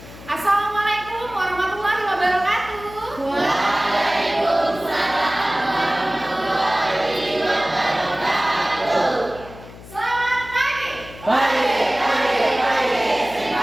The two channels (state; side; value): noise; left; hum, 17 dB below the sound